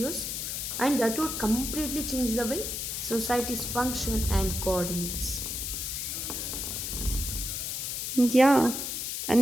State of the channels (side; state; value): left; noise; hiss, 3 dB below the sound